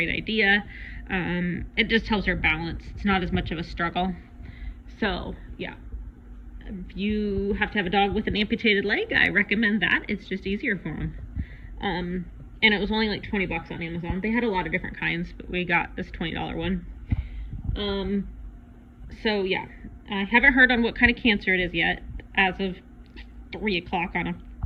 idea. It just helps her balance. It's not as much of a struggle. So yeah, if you have to have a dog with an amputated leg, I recommend that. It's just easier for them. And it was only like $20 on Amazon. They had a lot of different kinds, but we got this $20 one. So yeah, I haven't heard on what kind of cancer it is yet, as of 3 o'clock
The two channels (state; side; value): identical; both; correlation 1.00